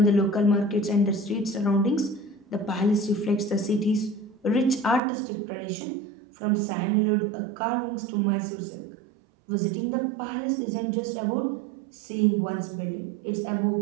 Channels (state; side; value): drops out; left; at 5.0 s